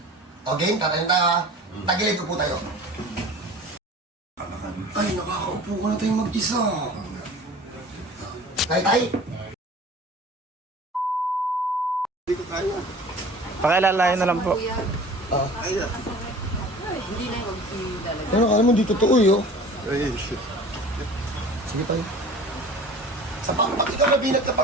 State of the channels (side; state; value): both; normal; correlation 0.42